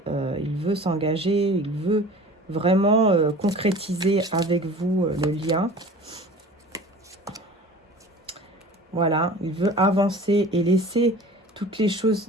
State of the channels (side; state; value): both; normal; correlation 0.41